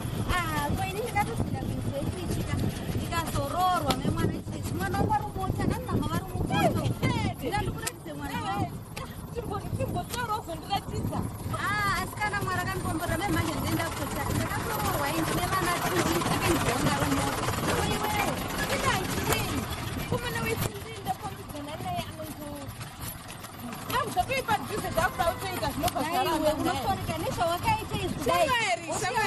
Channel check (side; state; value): both; identical; correlation 1.00